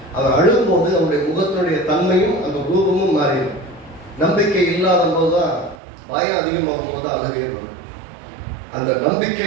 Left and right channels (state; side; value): drops out; left; at 5.8 s